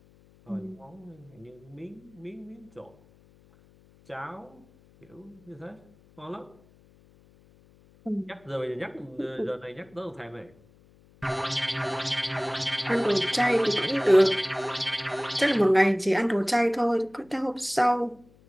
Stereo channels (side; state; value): left; noise; hum, 28 dB below the sound